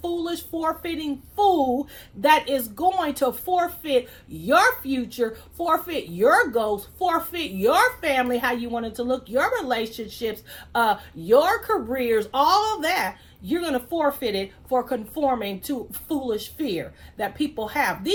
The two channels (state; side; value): identical; both; correlation 1.00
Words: foolish, forfeiting fool that is going to forfeit your future, forfeit your goals, forfeit your family, how you want it to look, your relationships, your careers, all of that. You're going to forfeit it for conforming to foolish fear that people have.